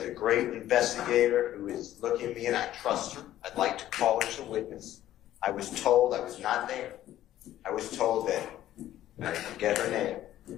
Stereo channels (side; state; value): right; quieter; 13.1 dB